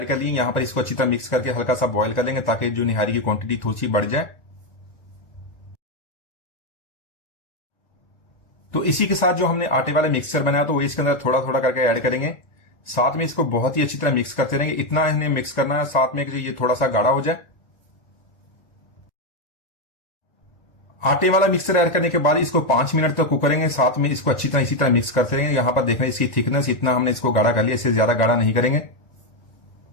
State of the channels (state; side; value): late; right; 1.8 ms